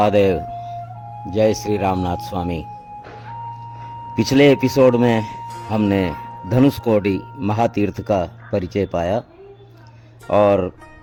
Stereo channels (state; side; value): identical; both; correlation 1.00